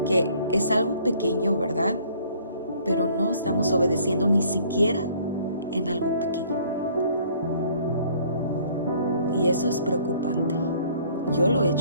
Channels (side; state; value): both; inverted; correlation -0.58